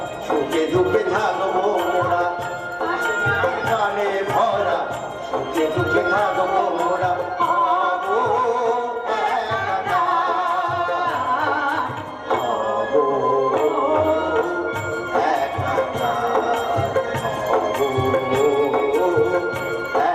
সুখে দুঃখে থাকবো মোরা, গানে ভরা সুখে দুঃখে থাকবো মোরা। হবো একাকার, হবো একাকার, হবো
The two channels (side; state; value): both; identical; correlation 1.00